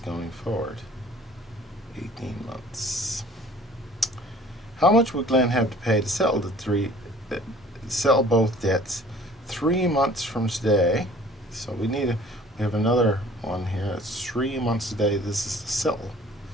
forward 18 months. How much would Glenn have to pay to settle both debts 3 months from today? So we have another one here. It's 3 months today. This is the settle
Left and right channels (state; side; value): normal; both; correlation 0.51